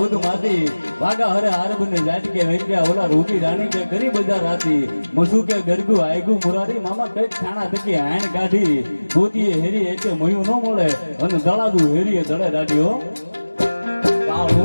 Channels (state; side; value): inverted; both; correlation -1.00